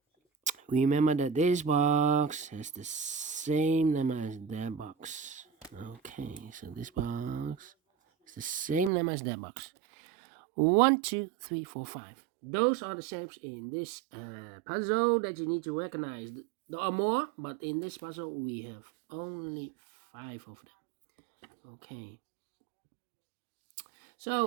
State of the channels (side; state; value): left; drops out; at 8.9 s